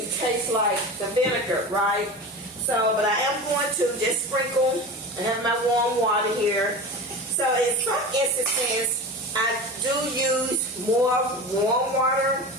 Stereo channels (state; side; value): normal; both; correlation 0.30